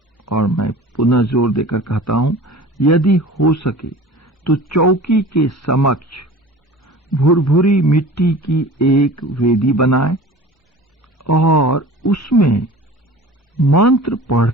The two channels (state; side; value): normal; both; correlation 0.40